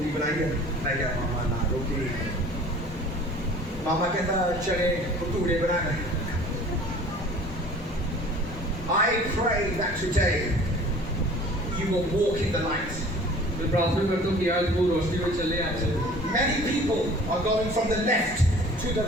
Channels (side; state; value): both; normal; correlation 0.47